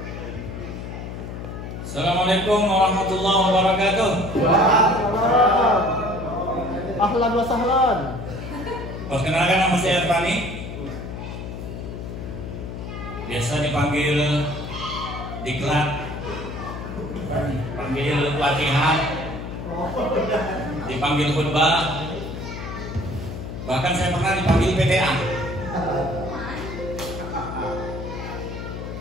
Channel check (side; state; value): left; noise; hum, 8 dB below the sound